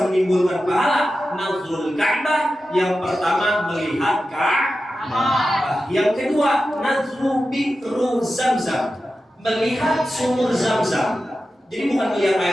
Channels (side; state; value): both; normal; correlation 0.92